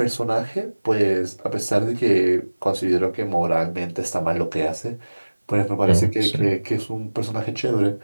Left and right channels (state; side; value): inverted; both; correlation -1.00